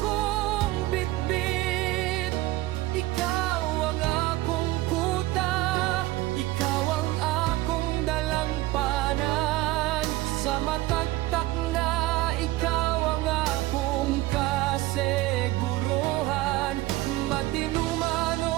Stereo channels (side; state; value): left; quieter; 18.0 dB